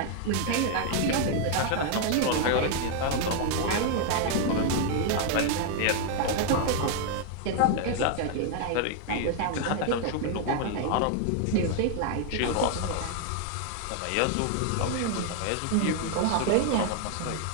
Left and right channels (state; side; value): different; both; correlation 0.00